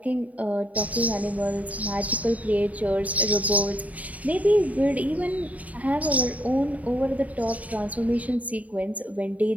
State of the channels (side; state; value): left; late; 0.071 ms